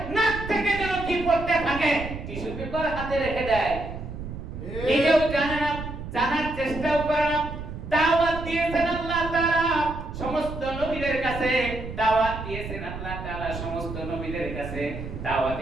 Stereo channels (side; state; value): right; noise; rumble, 9 dB below the sound